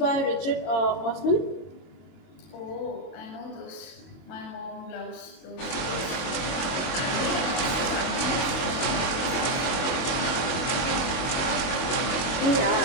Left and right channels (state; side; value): late; right; 22 ms